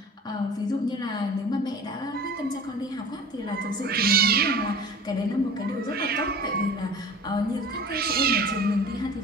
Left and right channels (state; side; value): normal; both; correlation 0.40